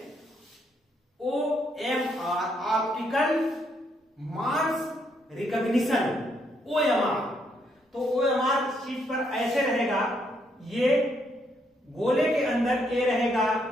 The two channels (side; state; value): both; normal; correlation 0.74